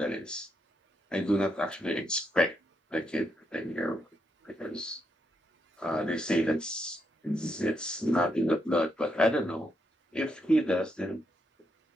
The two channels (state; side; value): normal; both; correlation 0.79